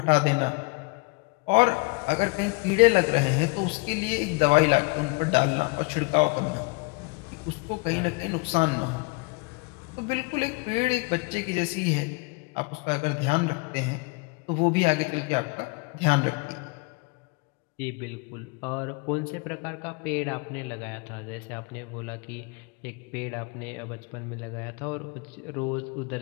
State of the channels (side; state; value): right; quieter; 28.5 dB